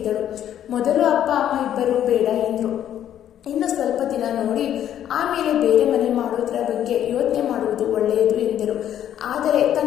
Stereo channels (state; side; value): quieter; right; 10.7 dB